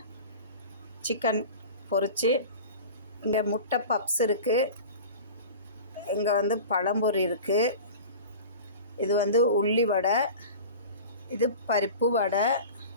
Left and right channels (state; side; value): inverted; both; correlation -0.36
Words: சிக்கன் பொரிச்சு, இங்கே முட்டை பப்ஸ் இருக்குது, இங்கே வந்து பழம்பொரி இருக்குது, இது வந்து உள்ளி வடை, இது பருப்பு வடை,